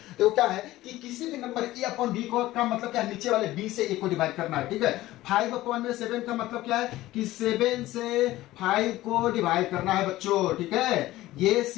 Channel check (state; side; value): quieter; right; 16.4 dB